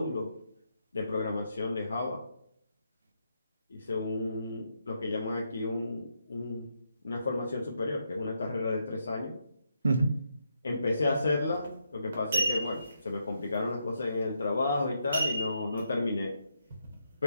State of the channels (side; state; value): both; inverted; correlation -0.80